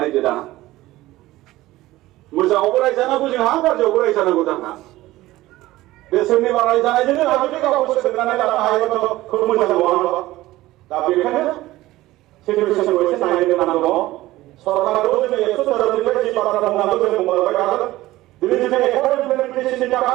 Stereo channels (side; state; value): left; quieter; 17.1 dB